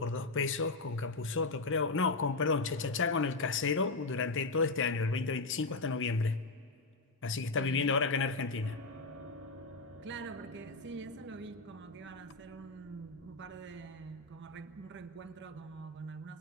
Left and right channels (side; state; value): right; quieter; 3.6 dB